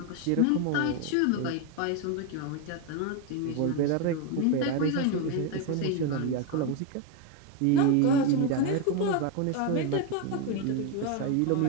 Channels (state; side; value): different; both; correlation 0.02